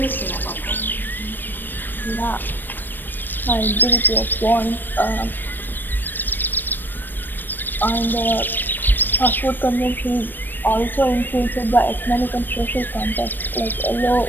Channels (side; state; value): right; late; 0.093 ms